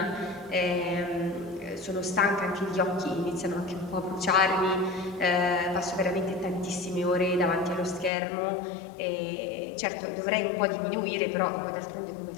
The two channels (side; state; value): right; drops out; at 8.1 s